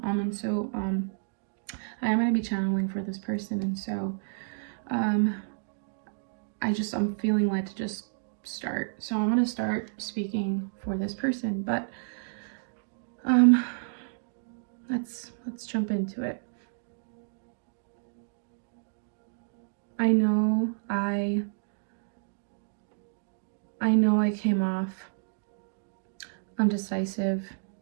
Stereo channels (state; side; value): silent; left; digital silence